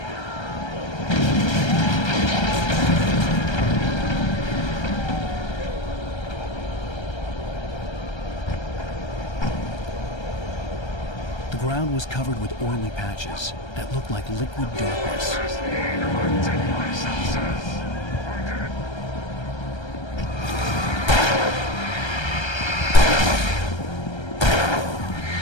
The ground was covered with oily patches that looked like liquid darkness.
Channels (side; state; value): right; late; 1.3 ms